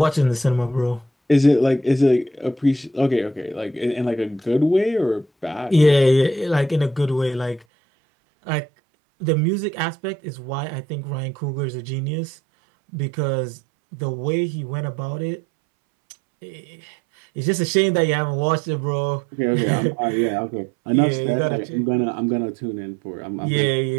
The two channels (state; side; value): drops out; left; at 7.7 s